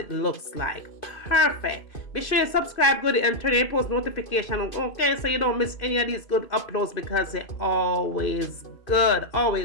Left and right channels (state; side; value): late; right; 2.5 ms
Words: looks like. Perfect. Be sure you subscribe, goodie, and turn your post notification on, okay, so you don't miss any of these good uploads because they're always good,